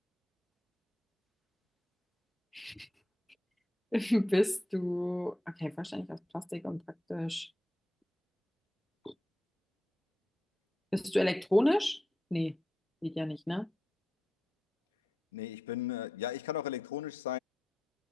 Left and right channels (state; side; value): normal; both; correlation 0.88